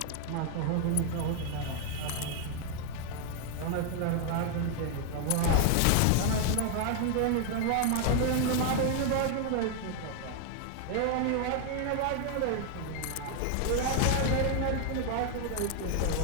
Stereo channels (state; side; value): different; both; correlation 0.00